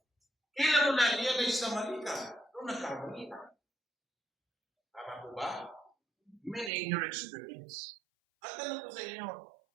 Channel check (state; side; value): drops out; left; at 6.7 s